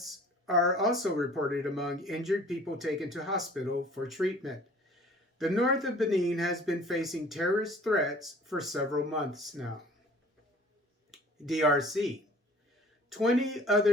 are also reported among injured people taken to hospital for treatment. The north of Benin has been facing terrorist threats for several months now. DRC. 20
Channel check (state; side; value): normal; both; correlation 0.50